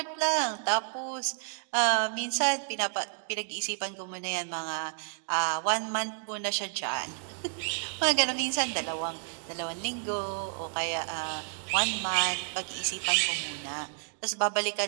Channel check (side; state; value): left; silent; 57 dB below the other